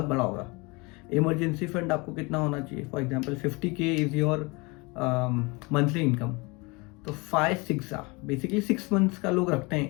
बड़ा होगा. Emergency fund आपको कितना होना चाहिए? For example 50K is your monthly income. तो 5-6 बेसिकली 6 मंथ्स का लोग रखते हैं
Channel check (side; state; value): right; quieter; 26.9 dB